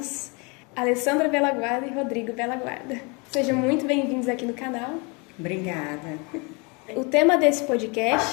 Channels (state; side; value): quieter; right; 30.4 dB